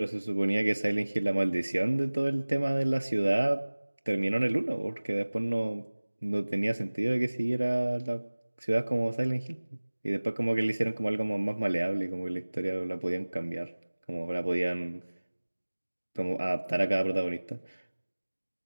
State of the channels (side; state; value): both; inverted; correlation -1.00